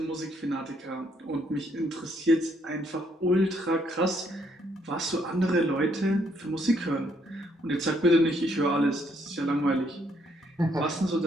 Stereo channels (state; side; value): normal; both; correlation 0.71